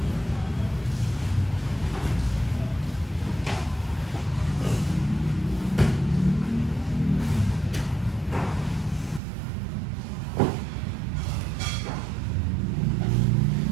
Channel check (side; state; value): left; drops out; at 9.2 s